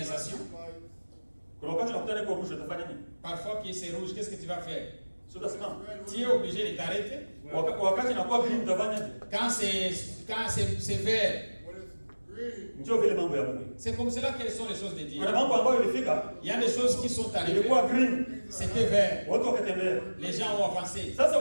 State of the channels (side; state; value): both; inverted; correlation -1.00